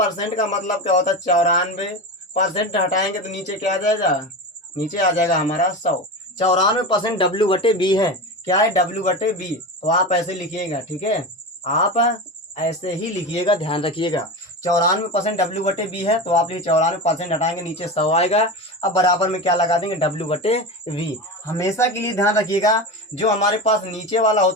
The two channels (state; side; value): normal; both; correlation 0.24